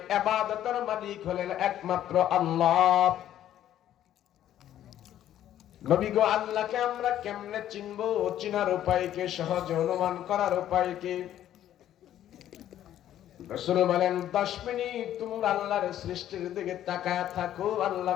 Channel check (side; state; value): right; quieter; 11.7 dB